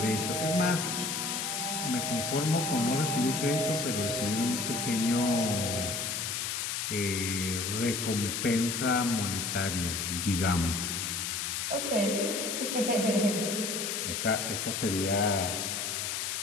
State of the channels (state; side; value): noise; left; hiss, 2 dB below the sound